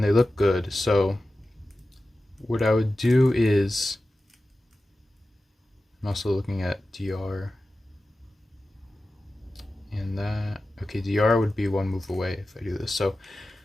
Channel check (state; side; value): normal; both; correlation 0.94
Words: they look good, so what I would do is, I'm also looking at DR and that. Okay, DR would be one move away if I do this. So